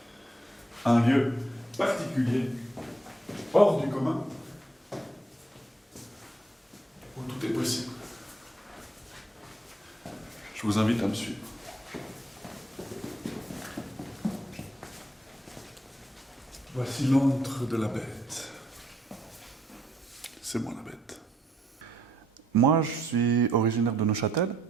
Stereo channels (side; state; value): both; normal; correlation 0.72